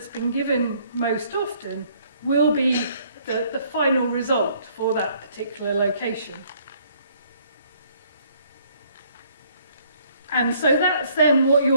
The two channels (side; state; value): both; inverted; correlation -0.63